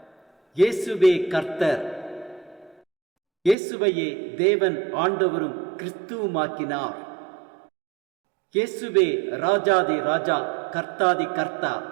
இயேசுவே கர்த்தர். இயேசுவையே தேவன் ஆண்டவரும் கிறிஸ்துவுமாக்கினார். இயேசுவே ராஜாதி ராஜா, கர்த்தாதி கர்த்தா.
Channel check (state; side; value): drops out; left; at 3.6 s